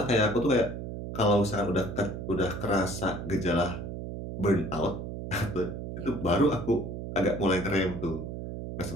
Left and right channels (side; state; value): right; noise; hum, 7 dB below the sound